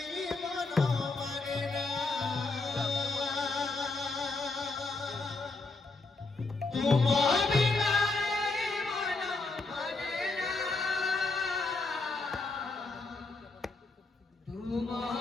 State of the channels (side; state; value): right; quieter; 3.6 dB